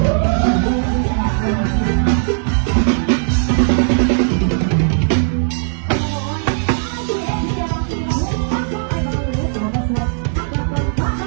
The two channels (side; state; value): left; silent; digital silence